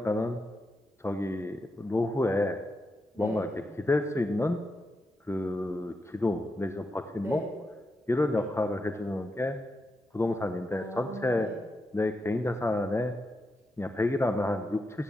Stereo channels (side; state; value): both; normal; correlation 0.86